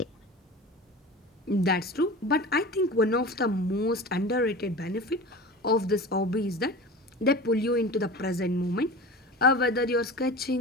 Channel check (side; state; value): both; normal; correlation 0.34